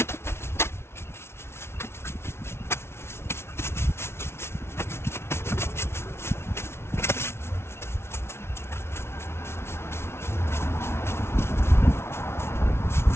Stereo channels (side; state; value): right; late; 0.12 ms